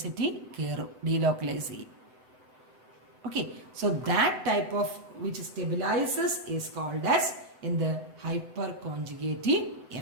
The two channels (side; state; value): left; late; 7.9 ms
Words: കയറും, ഡീലോക്കലൈസ് ചെയ്യും. Okay, so that type of which stabilizes is called as in the hyperconjugative